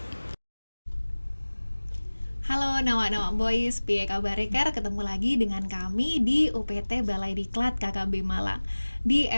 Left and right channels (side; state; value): both; inverted; correlation -1.00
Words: Halo Nawa-Nawa Boys, piye kabar Ker? Ketemu lagi dengan kami di UPT Balai Diklat KKB Malang. Di